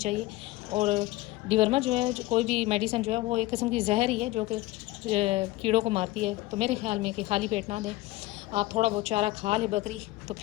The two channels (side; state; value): right; quieter; 18.6 dB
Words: और डिवर्मर जो है कोई भी मेडिसिन जो है वो एक किस्म की जहर ही है जो कि कीड़ों को मारती है। तो मेरे ख्याल में कि खाली पेट ना दें, आप थोड़ा बहुत चारा खा ले बकरी तो